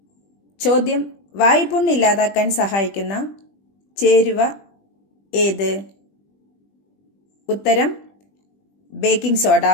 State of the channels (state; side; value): late; right; 20 ms